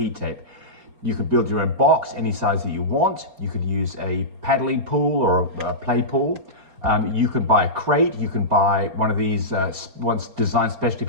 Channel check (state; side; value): late; left; 4.3 ms